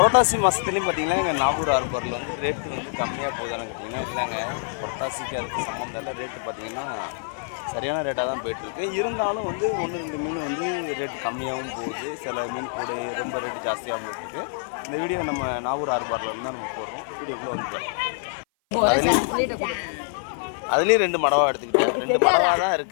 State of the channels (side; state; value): right; silent; 56 dB below the other